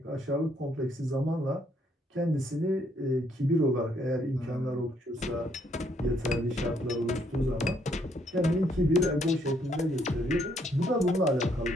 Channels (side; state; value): both; normal; correlation 0.70